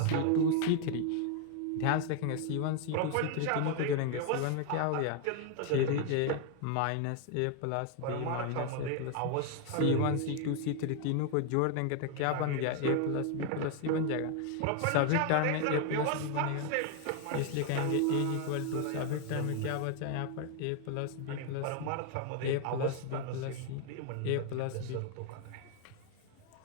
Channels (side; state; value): both; different; correlation 0.01